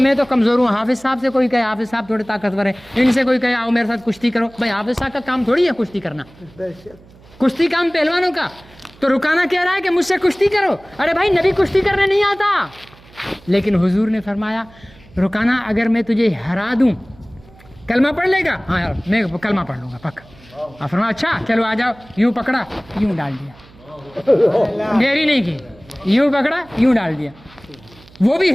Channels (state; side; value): noise; right; hum, 25 dB below the sound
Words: تو کمزور ہوں۔ حافظ صاحب سے کوئی کہے حافظ صاحب تھوڑے طاقتور ہیں، ان سے کوئی کہے آؤ میرے ساتھ کشتی کرو، بھائی حافظ صاحب کا کام تھوڑی ہے کشتی کرنا، کشتی کام پہلوانوں کا۔ تو رکانہ کہہ رہا ہے کہ مجھ سے کشتی کرو، ارے بھائی نبی کشتی کرنے نہیں آتا۔ لیکن حضور نے فرمایا رکانہ اگر میں تجھے ہرا دوں کلمہ پڑھ لے گا؟ ہاں یار میں کلمہ پڑھ لوں گا پکا۔ فرمایا اچھا چلو آ جاؤ، یوں پکڑا یوں ڈال دیا، دیری نہیں کی، یوں پکڑا یوں ڈال دیا۔ وہ بھی